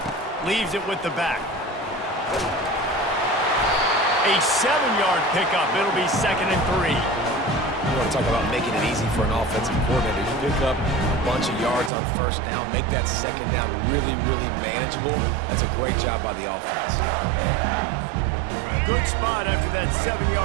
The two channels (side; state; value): left; drops out; at 11.9 s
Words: Leaves it with the back. A 7-yard pickup. It'll be 2nd and 3. You want to talk about making it easy for an offensive coordinator. You pick up a bunch of yards on first down, make that second down really, really manageable. That's a great job by the offense. Good spot after that